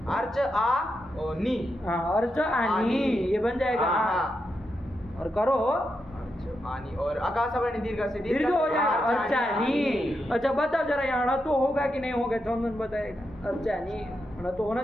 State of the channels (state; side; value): normal; both; correlation 0.85